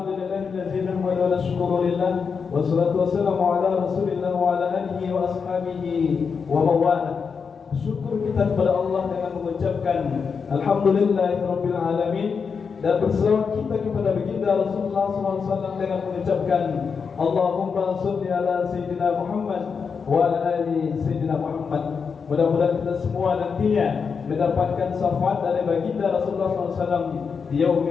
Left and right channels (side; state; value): right; quieter; 5.8 dB